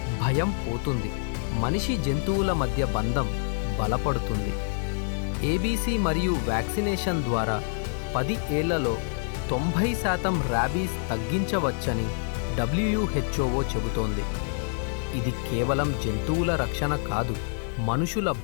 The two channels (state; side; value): silent; right; digital silence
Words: భయం పోతుంది, మనిషి జంతువుల మధ్య బంధం బలపడుతుంది. ఏబీసీ మరియు వ్యాక్సినేషన్ ద్వారా 10 ఏళ్లలో 90% ర్యాబీస్ తగ్గించవచ్చని WHO చెబుతోంది. ఇది కేవలం జంతువుల రక్షణ కాదు, మనుషుల